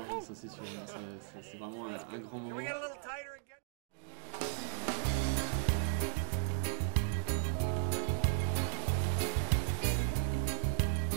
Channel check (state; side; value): silent; left; digital silence